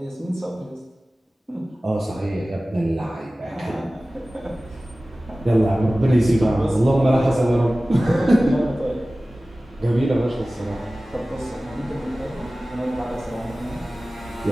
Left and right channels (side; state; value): both; normal; correlation 0.97